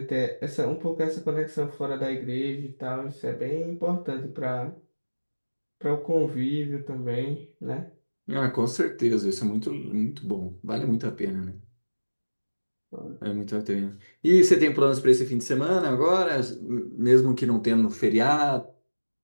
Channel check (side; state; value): both; inverted; correlation -1.00